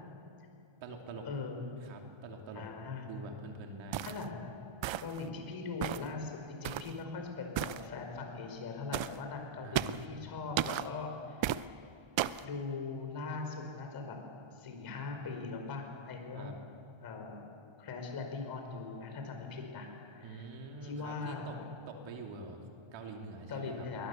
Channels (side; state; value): left; late; 1.3 ms